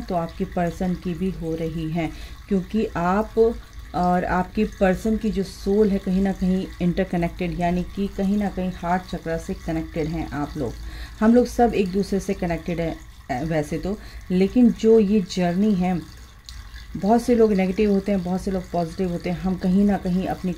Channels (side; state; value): both; identical; correlation 1.00